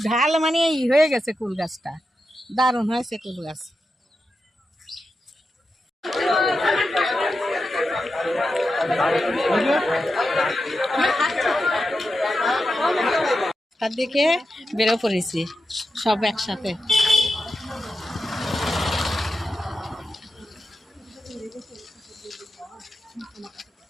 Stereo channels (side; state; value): both; normal; correlation 0.89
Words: ঢাল, মানে হয়ে গেছে কুল গাছটা, দারুণ হয়েছে কুল গাছ। তার দিকে বেরো পড়েছি সব একসাথে।